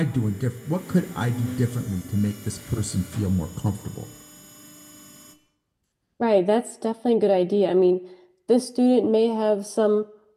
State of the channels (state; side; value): identical; both; correlation 1.00